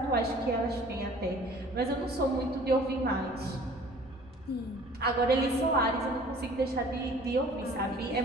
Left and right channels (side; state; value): both; normal; correlation 0.50